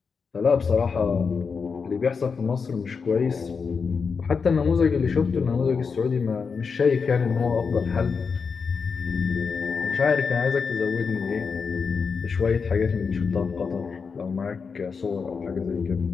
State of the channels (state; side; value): quieter; right; 5.4 dB